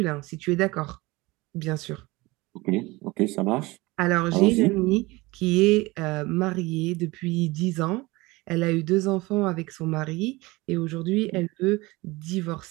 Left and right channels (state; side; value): quieter; left; 22.1 dB